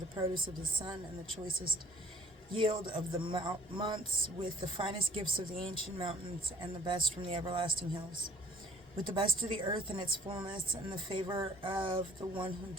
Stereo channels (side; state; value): both; normal; correlation 0.56